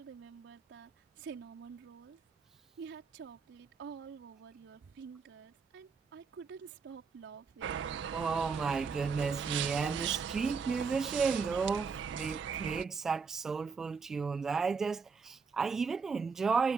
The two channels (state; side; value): quieter; left; 5.3 dB